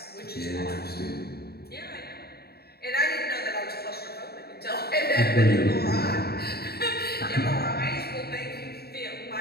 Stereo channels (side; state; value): right; late; 0.46 ms